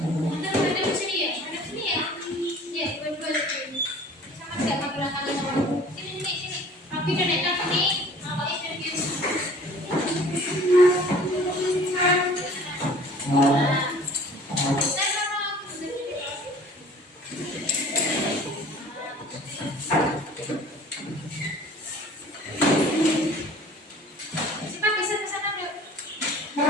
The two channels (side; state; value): both; normal; correlation 0.48